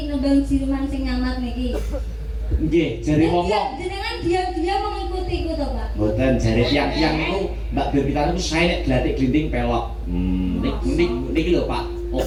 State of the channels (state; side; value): identical; both; correlation 1.00